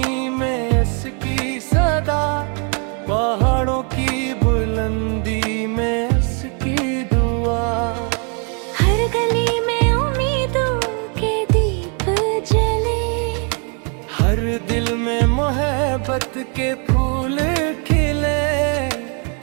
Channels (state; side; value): quieter; left; 37.5 dB